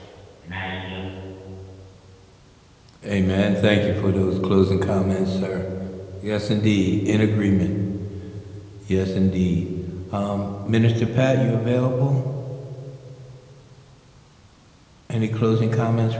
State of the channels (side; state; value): both; identical; correlation 1.00